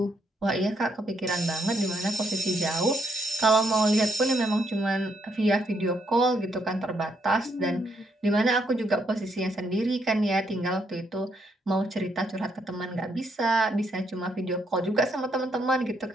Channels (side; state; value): both; normal; correlation 0.74